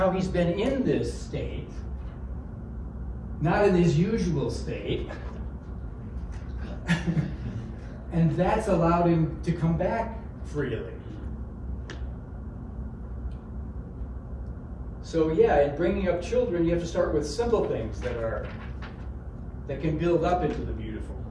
he's been in this state, not in his usual state, and that's allowed him to come back freely. So yeah, in bringing up children, you have to start with simple things that can build up into the beautiful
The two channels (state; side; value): identical; both; correlation 1.00